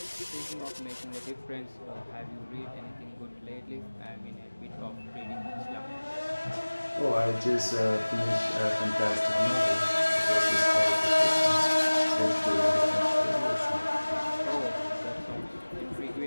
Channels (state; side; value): inverted; both; correlation -1.00